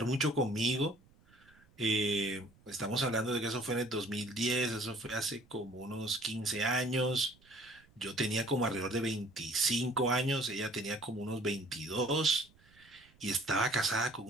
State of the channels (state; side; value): noise; right; rumble, 29 dB below the sound